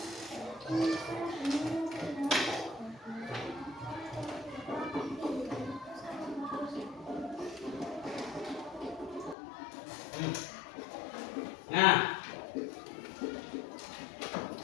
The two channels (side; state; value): right; drops out; at 9.3 s